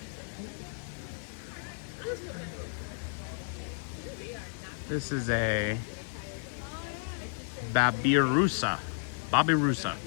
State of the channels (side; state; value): right; silent; 56 dB below the other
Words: This is a Babirusa. Babirusa.